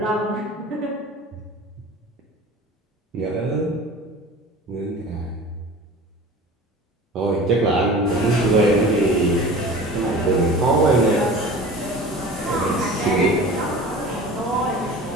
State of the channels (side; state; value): both; normal; correlation 0.38